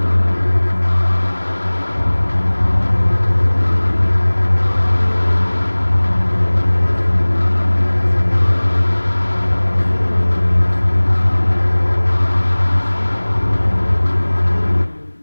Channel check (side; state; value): both; inverted; correlation -1.00